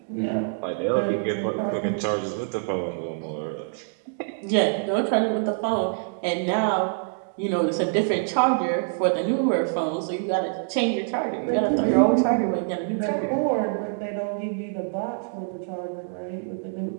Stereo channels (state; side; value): silent; left; digital silence